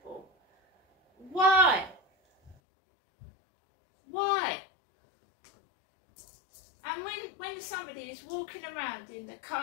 Why? Why? And when somebody is walking around in the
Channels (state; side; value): drops out; right; at 2.6 s